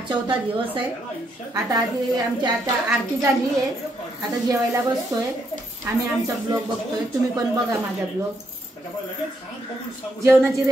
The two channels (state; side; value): normal; both; correlation 0.76